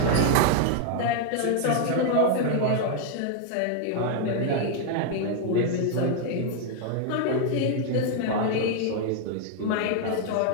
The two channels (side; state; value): both; different; correlation 0.00